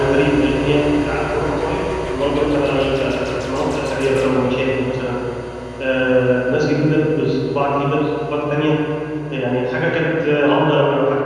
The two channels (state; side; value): identical; both; correlation 1.00